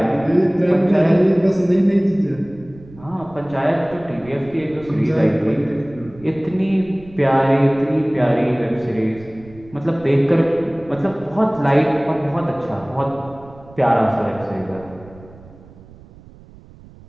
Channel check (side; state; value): right; noise; rumble, 21 dB below the sound